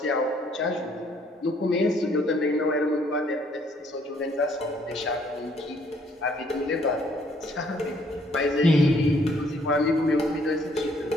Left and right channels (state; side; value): normal; both; correlation 0.65